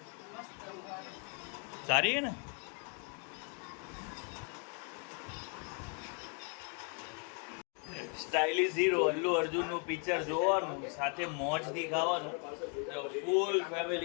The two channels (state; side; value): quieter; right; 38.2 dB